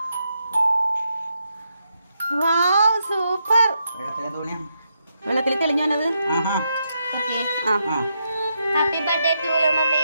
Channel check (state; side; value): inverted; both; correlation -0.81